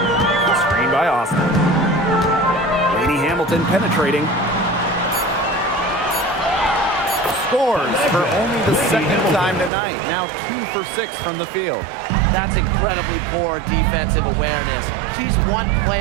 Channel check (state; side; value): drops out; left; at 9.7 s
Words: Screen by Austin. Laney Hamilton penetrating. Scores for only the second time tonight. Now 2 for 6 from the field. That's incredibly poor defensive awareness. She's one